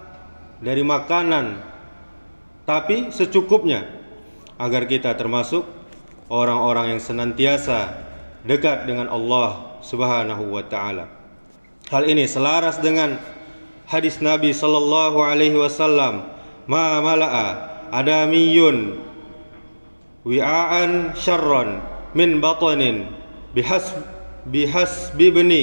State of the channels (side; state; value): both; inverted; correlation -1.00